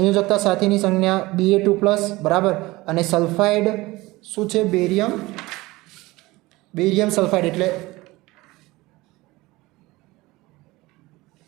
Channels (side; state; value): left; quieter; 20.4 dB